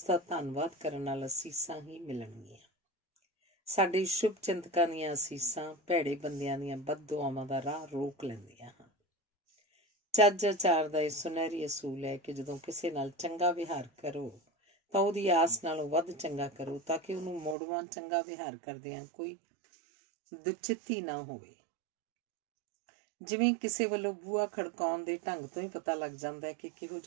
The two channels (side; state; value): left; drops out; at 17.6 s